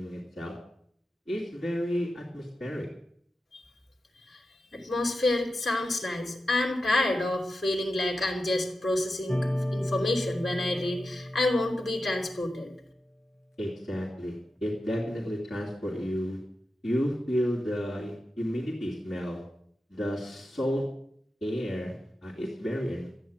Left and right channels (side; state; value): both; normal; correlation 0.91